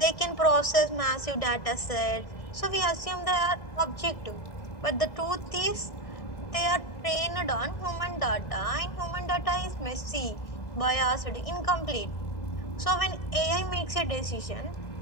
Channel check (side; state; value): right; late; 1.6 ms